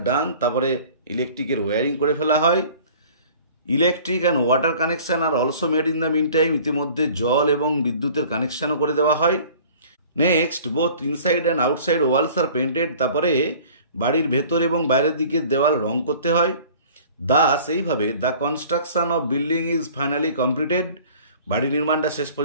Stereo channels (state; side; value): inverted; both; correlation -0.48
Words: done, তারপরে ইলেকট্রিকের ওয়ারিং করে ফেলা হয়। Electric and water connection are also made in the meantime, ইতিমধ্যে জল এবং বিদ্যুতের কানেকশনও করে দেওয়া হয়। Next, both inside and outside walls are painted, তারপরে বাড়ির ভেতর এবং বাইরের দিকের দেওয়াল রং করতে হয়। দাস এইভাবে the construction of building is finally completed, বাড়ি নির্মাণটা শেষ